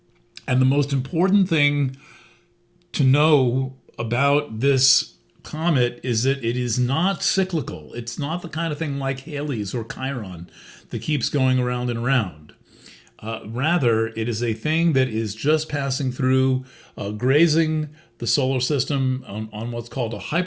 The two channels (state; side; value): identical; both; correlation 1.00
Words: And the most important thing to know about this comet is that it is not cyclical. It's not the kind of thing like Halley's or Chiron that keeps going around and around. Rather, it is a thing that is just passing through, grazing the solar system on what's called a